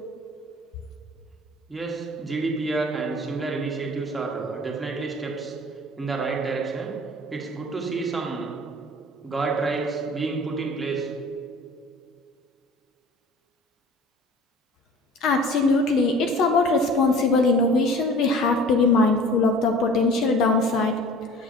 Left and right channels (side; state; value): both; normal; correlation 0.45